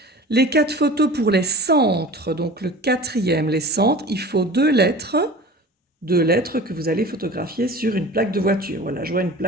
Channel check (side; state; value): both; normal; correlation 0.39